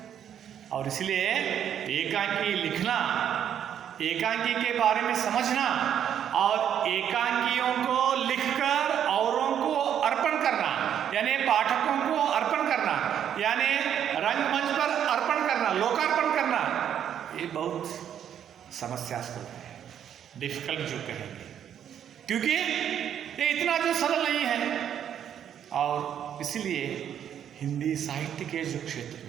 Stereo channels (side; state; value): left; quieter; 9.4 dB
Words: और इसलिए एकांकी लिखना, एकांकी के बारे में समझना और एकांकियों को लिखकर औरों को अर्पण करना, यानी पाठकों को अर्पण करना, यानी रंगमंच पर अर्पण करना, लोकार्पण करना, ये बहुत समस्यास्पद है, डिफिकल्ट जो कहेंगे, क्योंकि ये इतना जो सरल नहीं है। और इसलिए हिंदी साहित्य के जो क्षेत्र